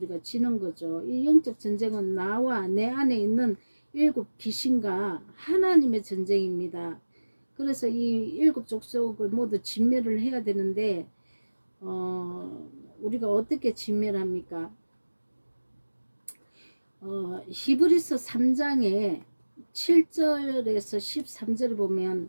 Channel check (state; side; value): inverted; both; correlation -1.00